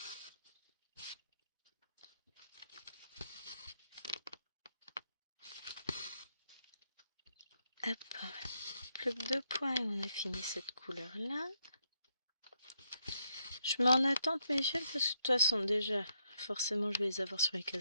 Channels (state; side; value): inverted; both; correlation -0.76